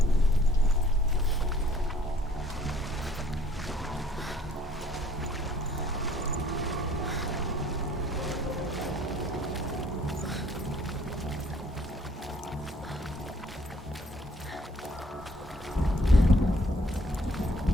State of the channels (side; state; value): both; normal; correlation 0.59